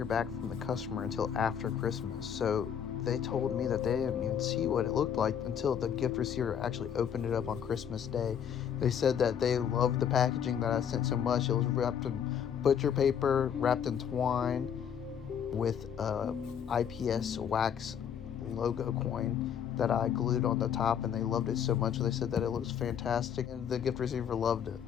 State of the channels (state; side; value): quieter; right; 8.4 dB